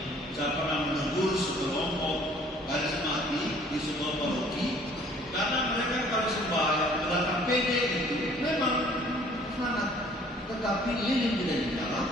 Saya pernah menegur sekelompok karismatik di sebuah paroki karena mereka kalau sembahyang datang pede itu memang semangat, tetapi lilin tidak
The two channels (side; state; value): both; normal; correlation 0.56